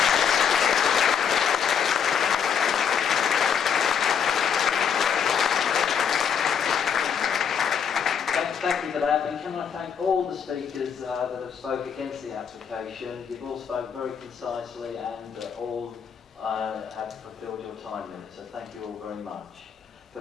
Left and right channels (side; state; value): right; quieter; 7.4 dB